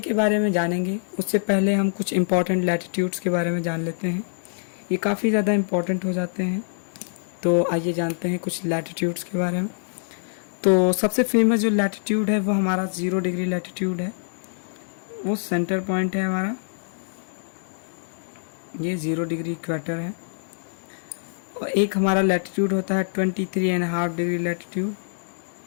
के बारे में जानेंगे, उससे पहले हम कुछ इम्पॉर्टेंट लैटिट्यूड्स के बारे में जान लेते हैं। ये काफ़ी ज़्यादा इम्पॉर्टेंट हो जाते हैं, तो आइए जानते हैं कुछ लैटिट्यूड्स के बारे में। तो सबसे फेमस जो लैटिट्यूड है वो हमारा 0 डिग्री लैटिट्यूड है, वो सेंटर पॉइंट है हमारा, ये 0 डिग्री इक्वेटर है। और एक हमारा लैटिट्यूड होता है 23.5 डिग्री लैटिट्यूड,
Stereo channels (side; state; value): right; silent; 62 dB below the other